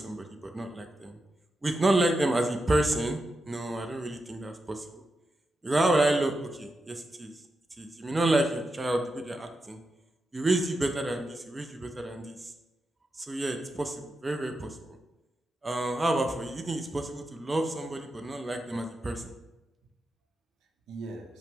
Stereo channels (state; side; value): normal; both; correlation 0.88